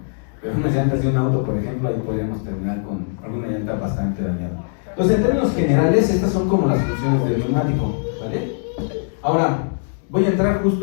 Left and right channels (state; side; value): silent; right; digital silence